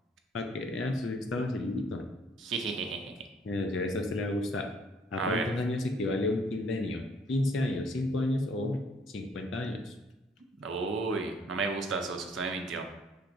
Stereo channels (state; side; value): normal; both; correlation 0.62